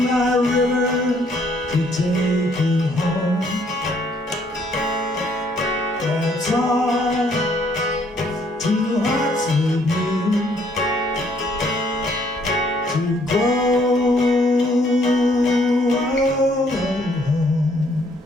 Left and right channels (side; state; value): both; normal; correlation 0.66